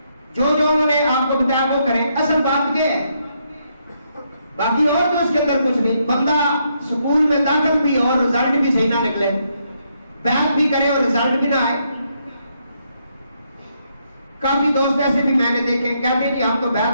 جو انہوں نے آپ کو بتایا وہ کریں. اصل بات یہ ہے, باقی اور تو اس کے اندر کچھ نہیں. بندہ سکول میں داخل بھی اور رزلٹ بھی صحیح نہ نکلے, بیعت بھی کرے اور رزلٹ بھی نہ آئے. کافی دوست ایسے بھی میں نے دیکھے کہتے ہیں کہ ہم تو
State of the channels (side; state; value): both; inverted; correlation -0.76